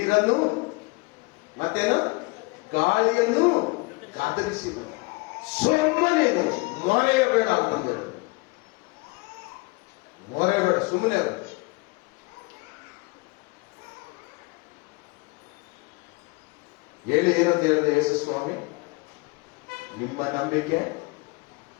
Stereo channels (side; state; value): right; quieter; 26.5 dB